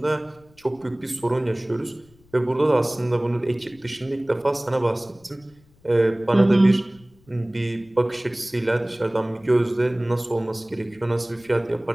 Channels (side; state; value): left; noise; rumble, 29 dB below the sound